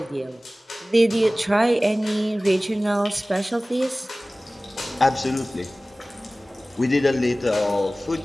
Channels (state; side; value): normal; both; correlation 0.98